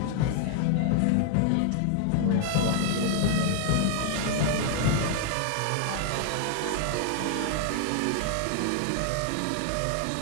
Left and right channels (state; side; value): different; both; correlation 0.00